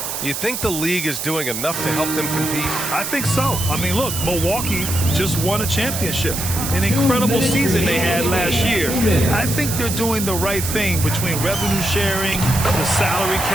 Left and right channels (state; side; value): noise; right; hiss, 4 dB below the sound